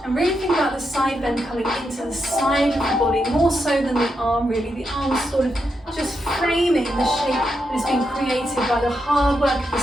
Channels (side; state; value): both; normal; correlation 0.84